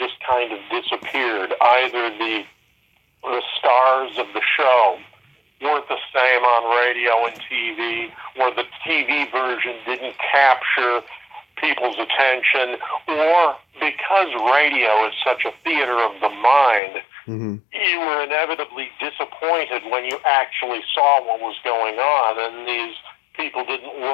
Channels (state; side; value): drops out; right; at 16.8 s